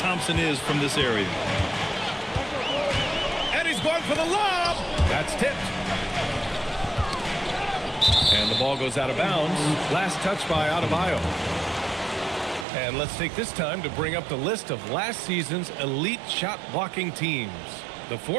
is from this area. And he's going for the lob. That's tipped. And the ball goes out of bounds. Last touch by Adebayo. And let's take this time to bring up the list of last season's elite shot blocking teams. The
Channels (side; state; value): left; drops out; at 12.7 s